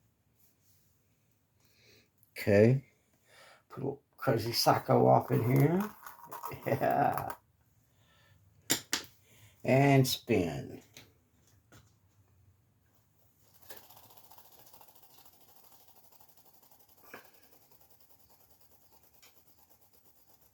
Okay. Put a little Crazy Psycho off in here. Yeah. And spin.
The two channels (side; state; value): both; identical; correlation 1.00